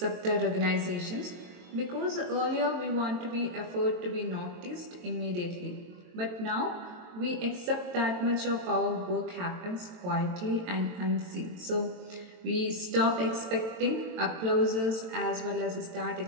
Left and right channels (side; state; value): left; late; 22 ms